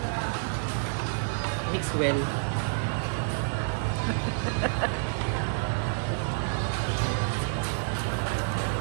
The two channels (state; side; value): silent; left; digital silence